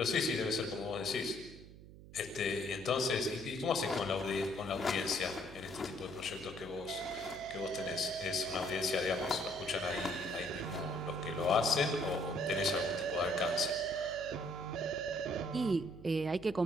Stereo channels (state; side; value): noise; right; hum, 17 dB below the sound